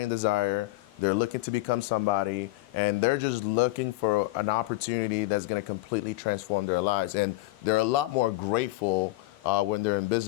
desire. They're looking to become somebody, and they're just looking for an opportunity that's gonna completely transform their lives. And they're a lot more grateful when they're in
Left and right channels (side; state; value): right; quieter; 19.3 dB